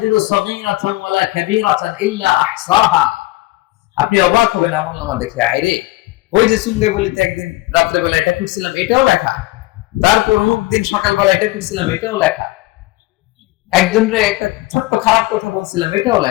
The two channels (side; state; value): right; quieter; 19.5 dB